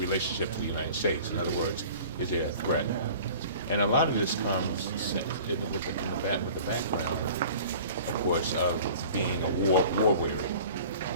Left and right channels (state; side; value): inverted; both; correlation -0.44